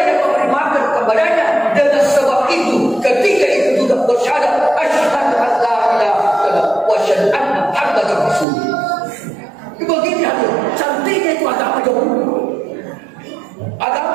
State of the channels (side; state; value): left; drops out; at 8.5 s